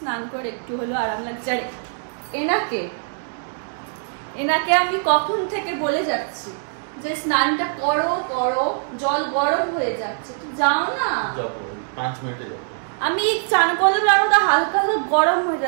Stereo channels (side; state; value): left; silent; digital silence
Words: করে একটু হলো আরাম লাগছে। আর এনাকে আমি কখন থেকে বলে যাচ্ছি যে স্নানটা করো করো, জল গরম হয়ে যাচ্ছে, তো যাও না। 5 মিনিটে আমি চান করলাম, আর ওটা হালকা হালকা গরম হয়ে